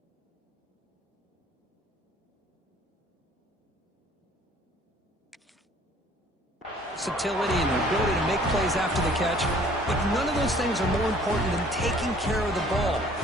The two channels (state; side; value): normal; both; correlation 0.55